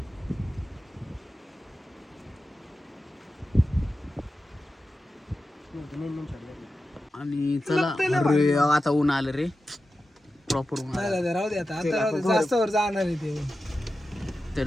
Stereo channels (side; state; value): both; normal; correlation 0.92